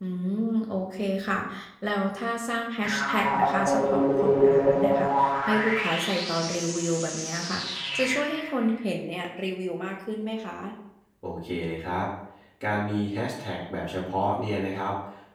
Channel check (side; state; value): both; identical; correlation 1.00